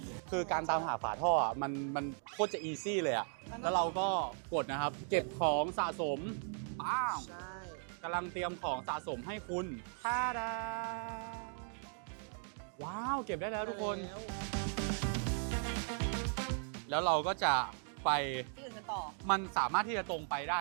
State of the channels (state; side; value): silent; left; 53 dB below the other